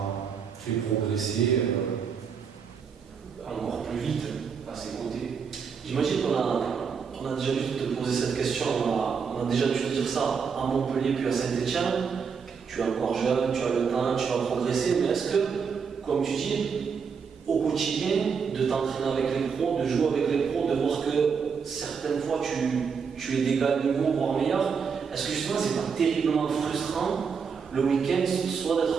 fait progresser encore plus vite à ses côtés. J'imagine qu'on a déjà dû te poser cette question, on a déjà dû te dire ça à Montpellier puis à Saint-Etienne. Tu es encore jeune, tu as le temps, tu vas progresser, mais est-ce que, comme tu dis, au quotidien, de t'entraîner avec les pros, de jouer avec les pros, de voir que certaines fois tu es d'égal niveau, voire meilleur, est-ce que justement c'est pas terriblement frustrant le week-end, soit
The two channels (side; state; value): left; quieter; 6.1 dB